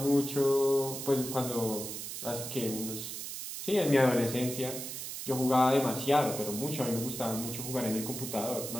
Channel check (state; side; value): noise; right; hiss, 7 dB below the sound